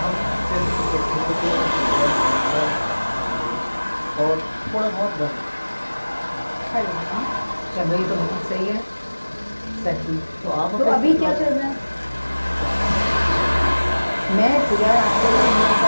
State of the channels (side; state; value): both; inverted; correlation -1.00